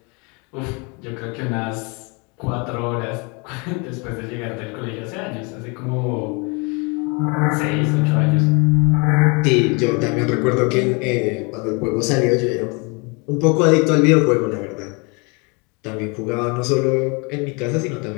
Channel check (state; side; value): quieter; right; 31.1 dB